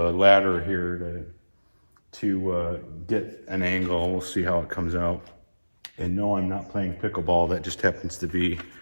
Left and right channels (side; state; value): both; inverted; correlation -1.00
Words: a ladder here to get an angle. We'll see how it comes out. And no, I'm not playing pickleball. That just happens to be